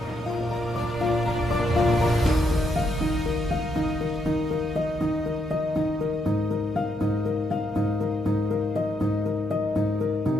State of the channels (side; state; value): both; normal; correlation 0.78